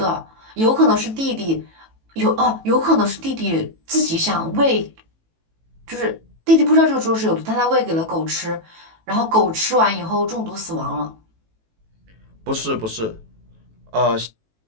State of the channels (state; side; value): late; left; 18 ms